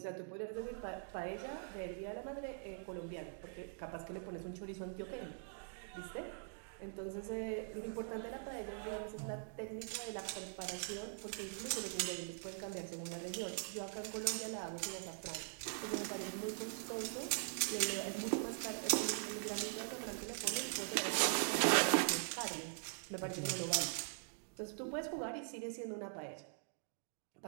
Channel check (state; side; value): silent; left; digital silence